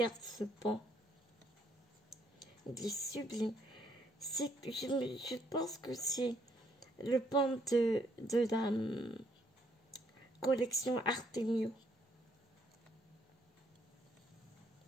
ce pan. Il est sublime. Je pense que c'est le pan de la collection Artemio.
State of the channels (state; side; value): normal; both; correlation 0.70